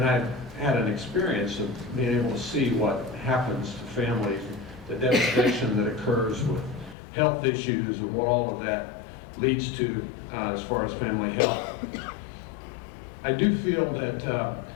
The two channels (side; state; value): right; drops out; at 7.0 s